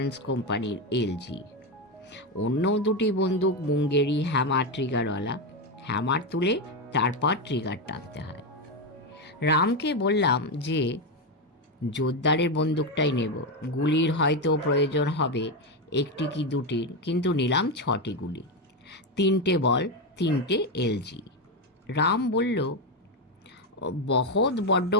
কোম্পানির এলজি। অন্য 2টি বন্দুক মুঙ্গেরি হ্যামার ট্রিগারওয়ালা। হ্যামার তুলে তারপর ট্রিগার টানতে হয়। রামকে বললাম যে জোরদারের বন্দুকটাই নেব, গুলির হয়তো প্রয়োজন হবে 1টি কি 2টির, কিন্তু নিলাম 6টি গুলি, 3টে বল, 3টে এলজি। রাম বলল, বহুত বড্ড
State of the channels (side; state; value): both; normal; correlation 0.10